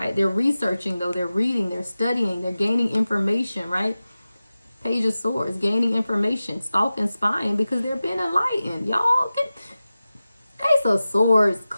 They're researching, though. They're reading, they're studying, they're gaining information, right? Page of Swords, gaining information, stalking, spying, because they're being enlightened. Y'all, Ace of Swords,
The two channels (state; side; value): inverted; both; correlation -0.95